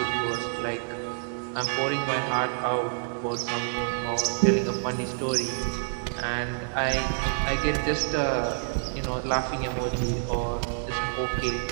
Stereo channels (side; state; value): left; silent; digital silence